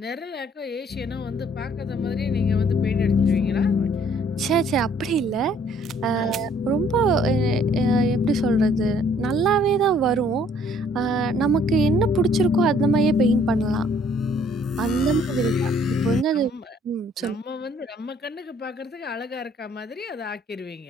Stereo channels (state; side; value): normal; both; correlation 0.61